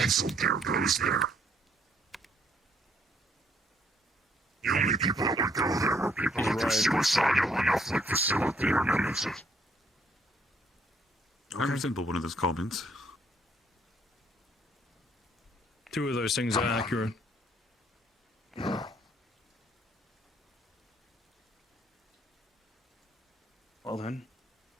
dare goes there. The only people that would go there were people that are suicidal enough like Facility or Nemesis. I resemble one of those comments. Two of those things are accurate. Well then.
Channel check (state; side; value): normal; both; correlation 0.67